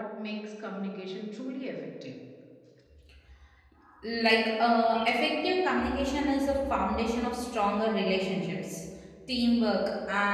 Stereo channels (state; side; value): identical; both; correlation 1.00